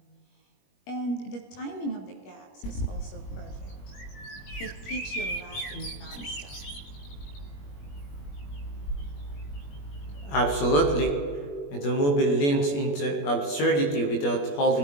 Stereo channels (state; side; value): late; right; 21 ms